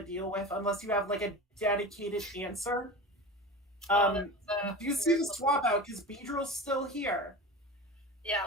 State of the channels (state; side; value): normal; both; correlation 0.30